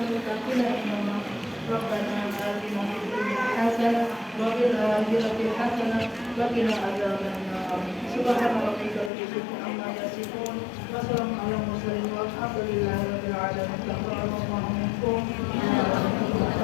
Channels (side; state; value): right; drops out; at 9.1 s